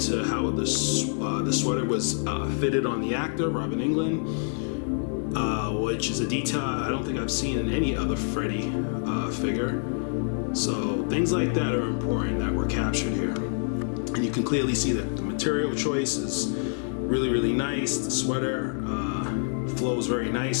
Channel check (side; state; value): right; silent; 56 dB below the other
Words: to how the sweater was fitted on the actor, Robin Englund. Which is a detail I don't think I've seen in any other Freddy figure. So things like that are important that were captured here. And you can clearly see that the material choice is really nice. The sweater flows very